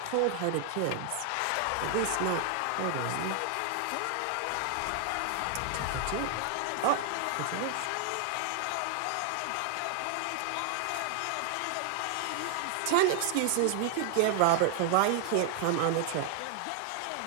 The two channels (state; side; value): different; both; correlation 0.00